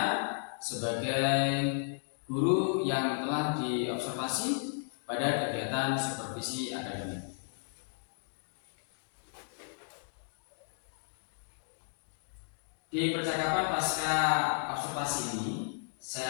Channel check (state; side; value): silent; right; digital silence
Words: sebagai guru yang telah diobservasi pada kegiatan supervisi akademik. Di percakapan pasca observasi ini,